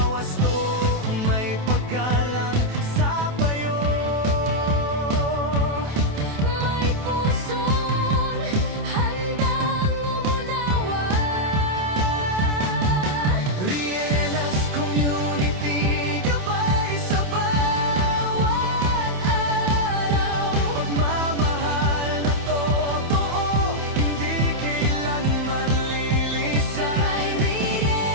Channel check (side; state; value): left; late; 28 ms